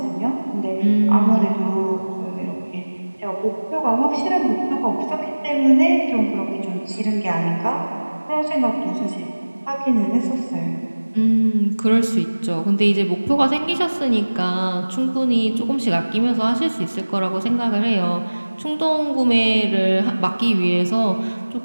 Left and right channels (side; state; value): both; inverted; correlation -1.00